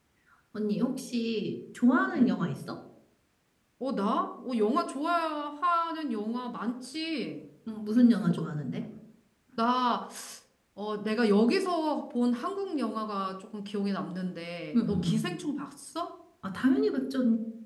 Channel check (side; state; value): both; identical; correlation 1.00